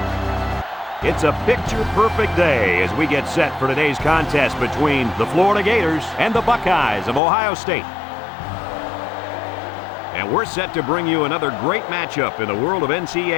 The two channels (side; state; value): right; drops out; at 7.2 s